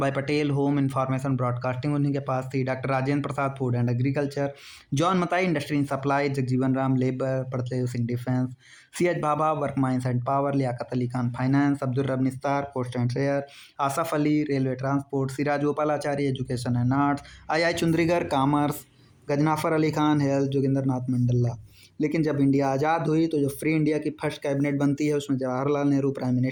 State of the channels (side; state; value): both; identical; correlation 1.00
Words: Patel, home information broadcasting उन्हीं के पास थी। Doctor Rajendra Prasad, food and agriculture. John Mathai, industry and supply. Jagjivan Ram, labour. Baldev Singh, defence. C H Bhabha, work, mines and power. Liaquat Ali Khan, finance. Abdur Rab Nishtar, post and share. Asaf Ali, railway transport. Siraj Gopalachari, education and arts. I Chundrigar, commerce. Ghazanfar Ali Khan, health. Joginder Nath Mandal. लेकिन जब India आज़ाद हुई तो जो फ्री इंडिया की first cabinet बनती है उसमें Jawaharlal Nehru prime